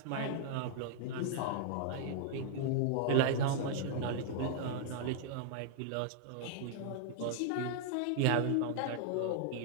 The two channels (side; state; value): both; different; correlation -0.01